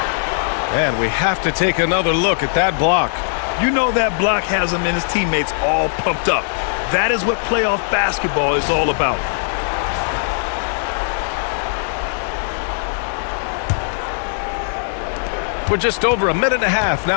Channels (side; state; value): right; silent; digital silence